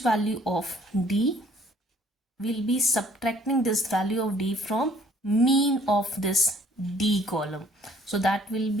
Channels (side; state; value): both; normal; correlation 0.59